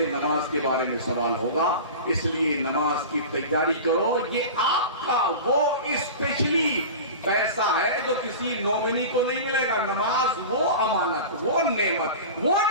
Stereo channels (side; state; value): both; inverted; correlation -0.32